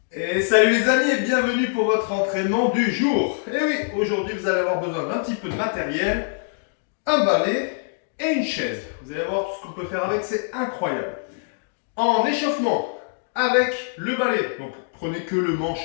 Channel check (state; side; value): silent; right; digital silence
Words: Et salut les amis et bienvenue pour votre entraînement du jour. Et oui, aujourd'hui vous allez avoir besoin d'un petit peu de matériel, un balai et une chaise. Vous allez voir tout ce qu'on peut faire avec, c'est incroyable. En échauffement, avec le balai, donc prenez que le manche